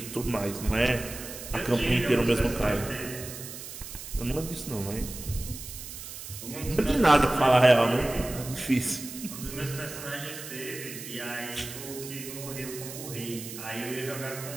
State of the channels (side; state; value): right; noise; hiss, 11 dB below the sound